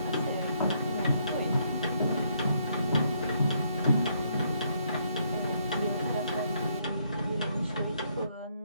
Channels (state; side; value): inverted; both; correlation -0.72